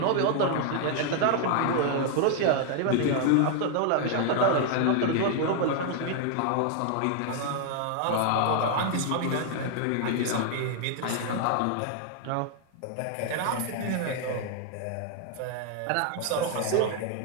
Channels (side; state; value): both; different; correlation 0.00